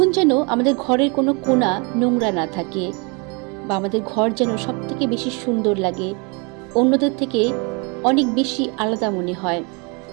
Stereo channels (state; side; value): quieter; left; 31.6 dB